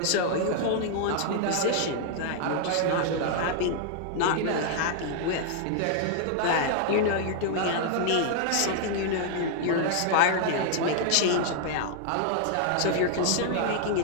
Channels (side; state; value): both; different; correlation 0.00